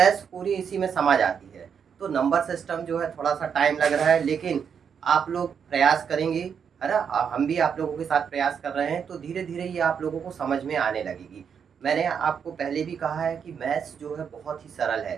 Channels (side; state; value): left; quieter; 7.1 dB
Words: पूरी इसी में समझ आती है। तो नंबर सिस्टम जो है थोड़ा सा टाइम लग रहा है, लेकिन आप लोग प्रयास करेंगे, है ना। हम भी आप लोगों के साथ प्रयास कर रहे हैं, तो धीरे धीरे ये आप लोगों को समझ में आने लगेगी। मैंने आपको पहले भी कहा है कि मैथ्स जो है बहुत ही सरल